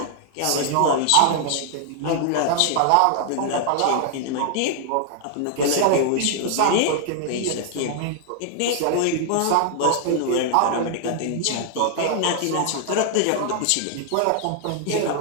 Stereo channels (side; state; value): both; different; correlation 0.00